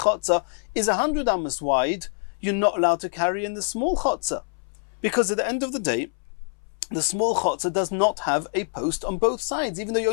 is 100 amos wide, you're not allowed to carry in the small chotzer. Because at the end of the day, the small chotzer does not have a post on both sides, even though you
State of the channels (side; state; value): right; silent; 62 dB below the other